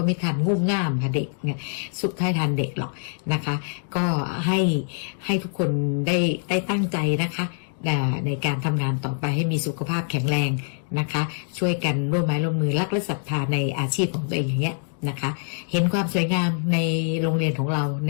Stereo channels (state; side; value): silent; right; 62 dB below the other